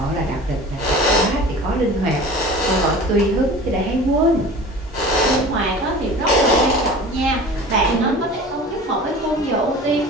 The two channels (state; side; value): normal; both; correlation 0.39